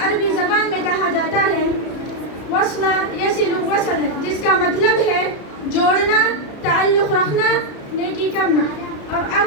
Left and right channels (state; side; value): late; right; 33 ms